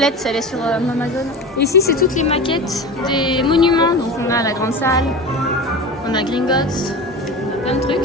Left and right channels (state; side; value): normal; both; correlation 0.30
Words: elle est sur Amazon. Ici, c'est toutes les maquettes des monuments. Donc, on a la grande salle, on a Gringotts, on a plein de